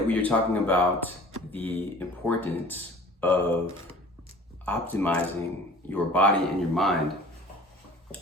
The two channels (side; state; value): both; normal; correlation 0.46